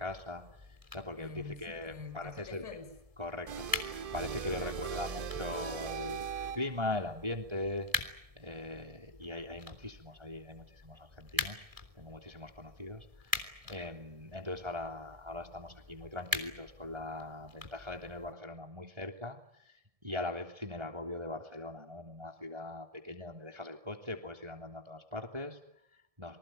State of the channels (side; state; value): left; late; 1.7 ms